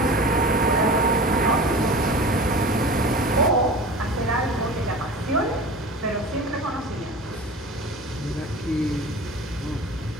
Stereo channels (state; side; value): normal; both; correlation 0.36